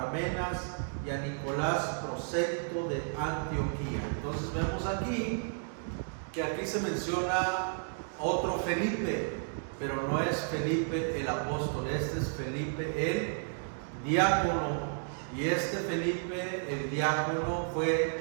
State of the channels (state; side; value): silent; left; digital silence